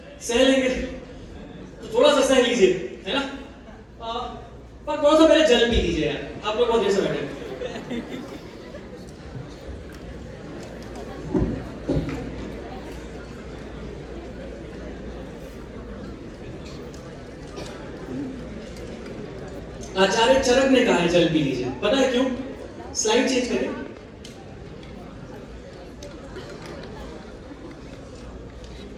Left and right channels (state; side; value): identical; both; correlation 1.00